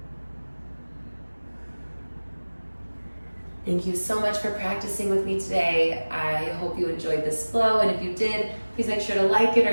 Thank you so much for practicing with me today. I hope you enjoyed this flow, and if you did, please make sure to like it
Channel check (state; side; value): inverted; both; correlation -1.00